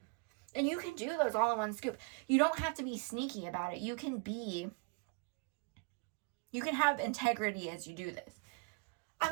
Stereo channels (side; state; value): left; quieter; 33.4 dB